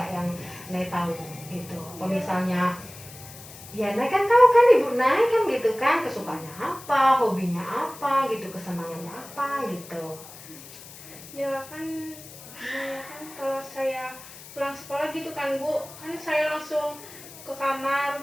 yang Nay tahu gitu? Apa misalnya ya Nay kan tahu kan ibu Nay kan gitu kan, kesukaannya apa, hobinya apa gitu, kesenangannya apa gitu. Ya kan, kalau saya pulang sekolah gitu kan Bu, kan saya langsung ke kamar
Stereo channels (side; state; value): left; noise; hiss, 17 dB below the sound